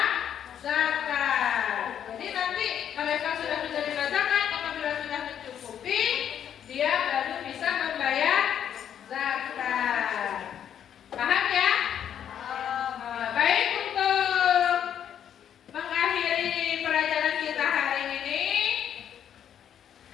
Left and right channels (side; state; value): right; quieter; 9.4 dB